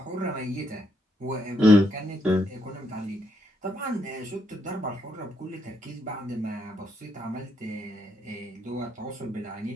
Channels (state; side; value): normal; both; correlation 0.76